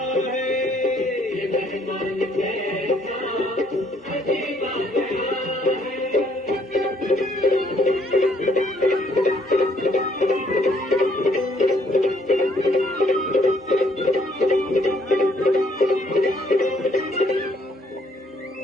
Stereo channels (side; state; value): both; normal; correlation 0.66